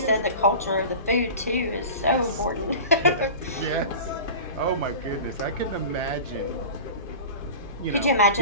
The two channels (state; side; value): inverted; both; correlation -0.35